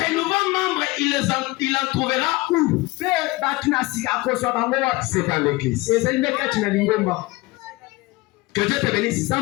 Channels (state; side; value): quieter; right; 21.4 dB